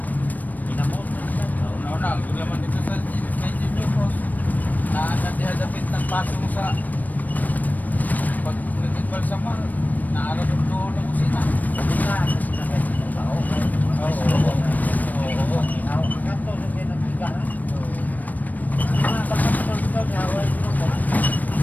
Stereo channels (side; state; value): right; late; 0.082 ms